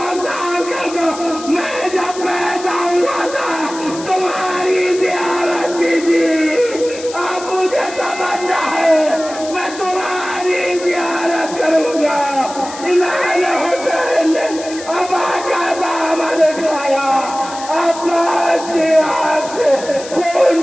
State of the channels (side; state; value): left; noise; hiss, 14 dB below the sound